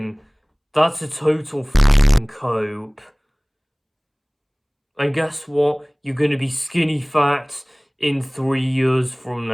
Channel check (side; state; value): both; identical; correlation 1.00